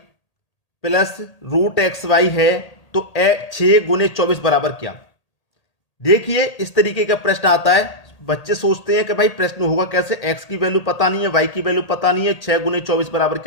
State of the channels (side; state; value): right; late; 1.8 ms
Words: plus root x y है, तो 6 गुने 24 बराबर क्या। देखिए इस तरीके का प्रश्न आता है, बच्चे सोचते हैं कि भाई प्रश्न होगा कैसे, एक्स की वैल्यू पता नहीं है, वाई की वैल्यू पता नहीं है, 6 गुने 24 बराबर